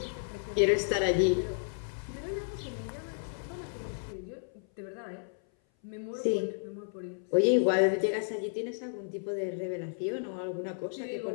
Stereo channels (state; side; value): silent; right; 56 dB below the other